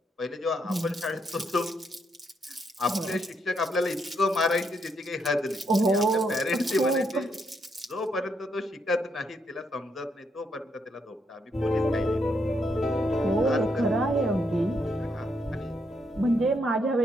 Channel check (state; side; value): normal; both; correlation 0.77